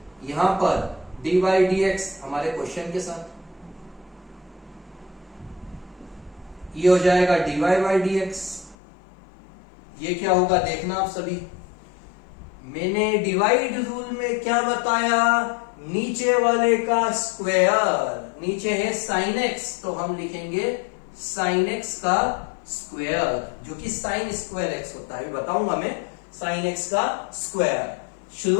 यहां पर dy dx हमारे क्वेश्चन के साथ, ये हो जाएगा dy dx। ये क्या होगा देखना आप सभी। मैंने डिवाइड रूल में क्या बताया? नीचे वाले का स्क्वायर, नीचे है sin x, तो हम लिखेंगे sin x का स्क्वायर, जो कि साइन स्क्वायर एक्स होता है, बताऊंगा मैं साइन एक्स का स्क्वायर।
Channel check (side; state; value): right; drops out; at 8.8 s